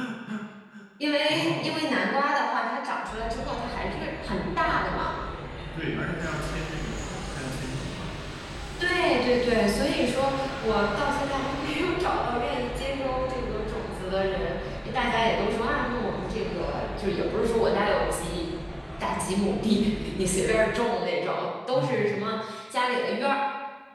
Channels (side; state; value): both; identical; correlation 1.00